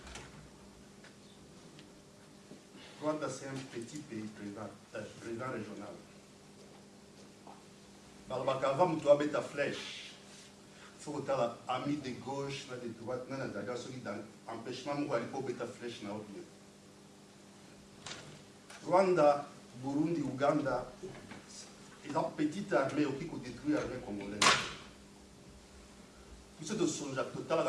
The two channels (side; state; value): both; identical; correlation 1.00